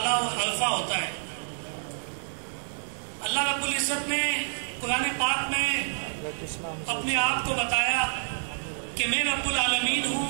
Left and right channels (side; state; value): left; silent; 58 dB below the other